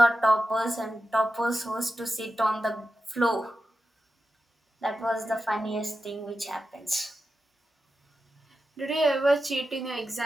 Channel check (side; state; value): both; normal; correlation 0.91